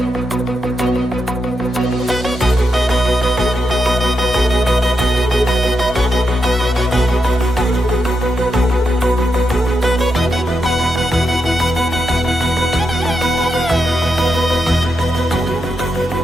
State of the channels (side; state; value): both; normal; correlation 0.84